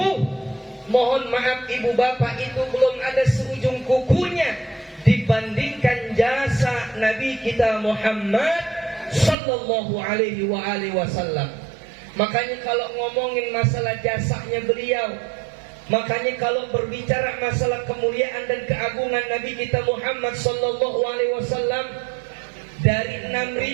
mohon maaf ibu bapak, itu belum ada seujung kukunya dibandingkan jasa Nabi kita Muhammad sallallahu alaihi wasallam. Makanya kalau ngomongin masalah jasanya beliau, makanya kalau berbicara masalah kemuliaan dan keagungan Nabi kita Muhammad sallallahu alaihi wasallam, dari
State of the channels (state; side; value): drops out; left; at 9.3 s